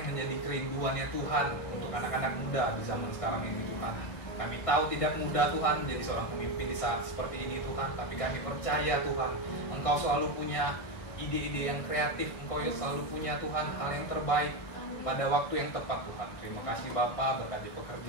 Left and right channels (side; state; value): right; late; 1.6 ms